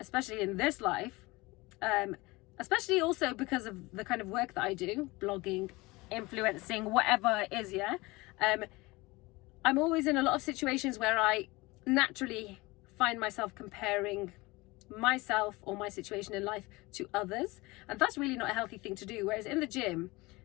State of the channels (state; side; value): quieter; right; 22.5 dB